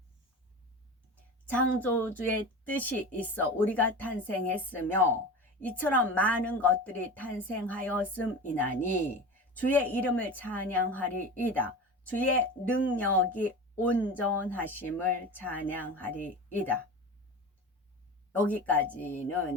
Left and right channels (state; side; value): normal; both; correlation 0.30